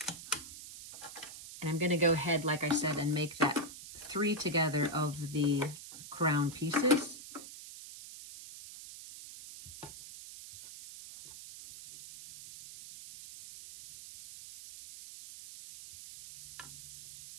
And I'm going to go ahead, like I said, and make that 3 together of the crown pieces.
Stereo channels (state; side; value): noise; right; hiss, 14 dB below the sound